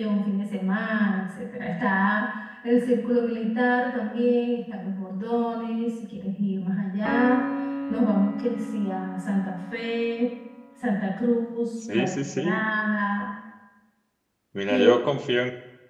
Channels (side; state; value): both; identical; correlation 1.00